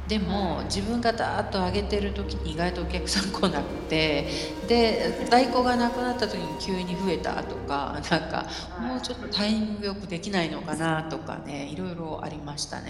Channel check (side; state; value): both; identical; correlation 1.00